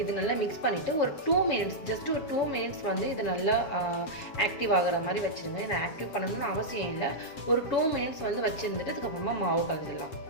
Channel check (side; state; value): right; late; 7.1 ms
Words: இது நல்லா மிக்ஸ் பண்ணிவிட்டு ஒரு 2 மினிட்ஸ், ஜஸ்ட் ஒரு 2 மினிட்ஸ் இது நல்லா ஆக்டிவ் ஆகிற மாதிரி வச்சுருங்க. இதை ஆக்டிவ் பண்ணணும்னு அவசியம் இல்லை. ஒரு 2 மினிட்ஸ் வச்சுருந்துட்டு அதுக்கப்புறமா மாவு கலந்துடலாம்.